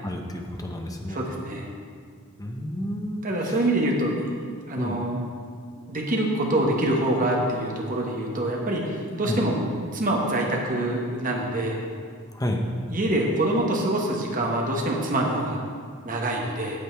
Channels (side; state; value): both; normal; correlation 0.39